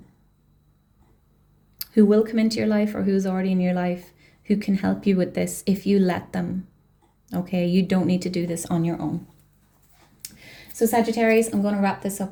who will come into your life or who's already in your life who can help you with this if you let them, okay? You don't need to do this on your own. So Sagittarius, I'm going to wrap this up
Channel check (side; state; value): both; identical; correlation 1.00